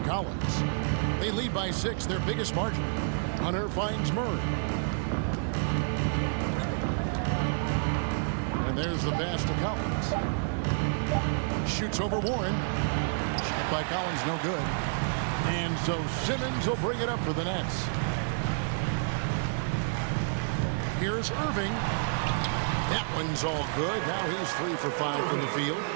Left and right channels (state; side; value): silent; left; digital silence